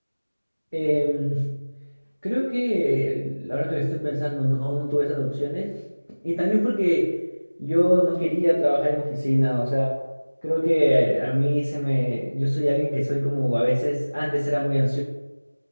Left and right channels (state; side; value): inverted; both; correlation -1.00